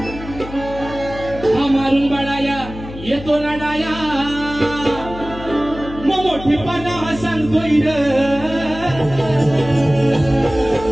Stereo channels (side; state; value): left; noise; hum, 13 dB below the sound